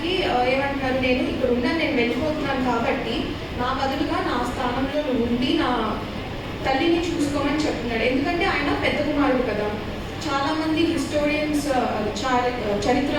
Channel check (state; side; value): identical; both; correlation 1.00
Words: ఏమంటున్నారు, నేను ఇక్కడ ఉన్నాను, నేను వెళ్ళిపోతున్నాను కాబట్టి నా బదులుగా నా స్థానంలో ఉండి నా తల్లిని చూసుకోమని చెప్తున్నాడు. ఎందుకంటే ఆయన పెద్ద కుమారుడు కదా. చాలామంది హిస్టోరియన్స్